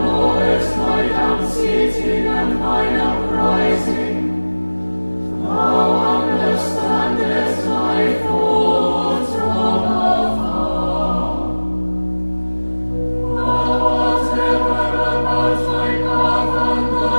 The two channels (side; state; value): both; inverted; correlation -1.00